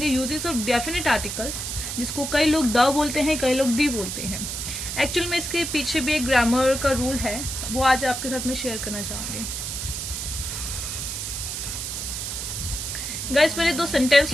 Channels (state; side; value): noise; right; hiss, 4 dB below the sound